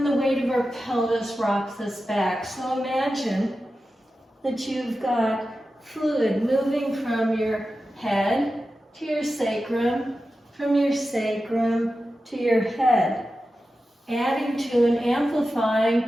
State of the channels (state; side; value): normal; both; correlation 0.92